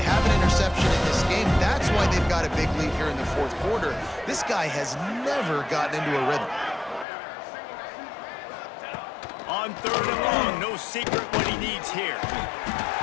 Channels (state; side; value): drops out; right; at 7.1 s